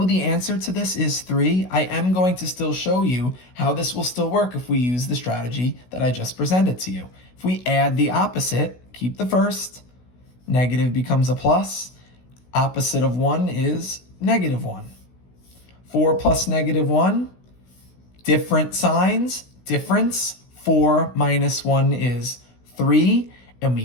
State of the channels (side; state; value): right; late; 16 ms